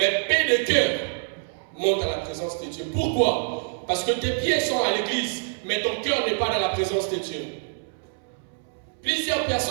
peu de cœur montent à la présence de Dieu. Pourquoi? Parce que tes pieds sont à l'église, mais ton cœur n'est pas dans la présence de Dieu. Plusieurs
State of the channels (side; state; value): left; silent; 61 dB below the other